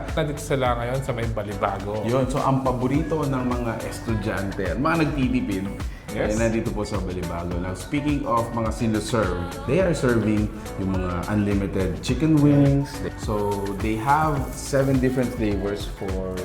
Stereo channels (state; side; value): identical; both; correlation 1.00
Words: nandito sila ngayon sa may Balibago. Yun, so ang paborito ng mga estudyante at mga nagtitipid, nandito po sa Balibago. Now, speaking of mga sino-serve, they are serving yung mga unlimited chicken wings. So, they have 7 different flavors for